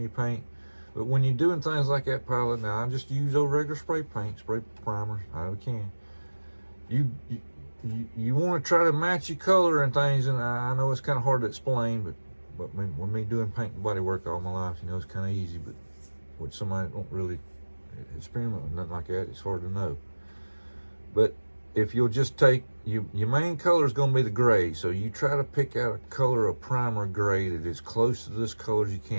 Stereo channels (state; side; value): inverted; both; correlation -1.00